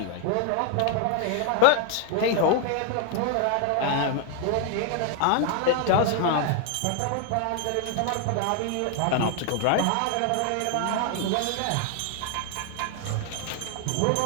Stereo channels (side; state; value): both; different; correlation 0.00